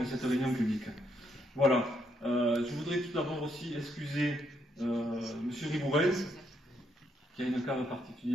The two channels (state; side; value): normal; both; correlation 0.75